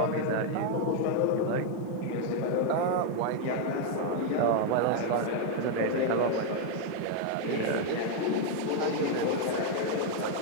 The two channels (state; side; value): different; both; correlation 0.00